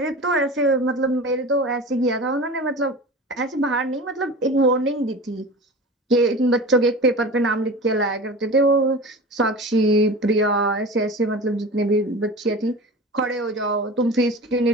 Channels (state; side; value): normal; both; correlation 0.34